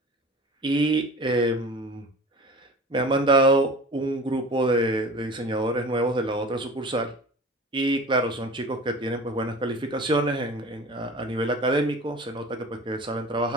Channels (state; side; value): normal; both; correlation 0.39